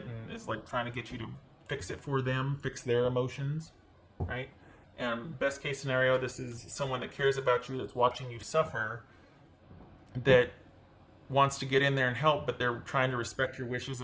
and is like trying to get you to fix it for them, fix their emotions, right? And best case scenario, this is someone that cares about you, that's watching you suffer, that wants to get in there and help, but they're trying to respect your wishes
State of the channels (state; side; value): identical; both; correlation 1.00